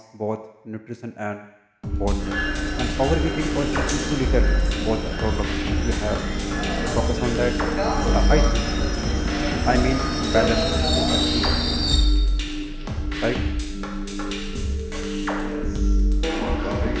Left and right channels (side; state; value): both; identical; correlation 1.00